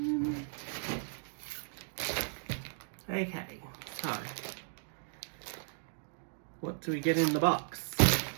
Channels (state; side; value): silent; left; digital silence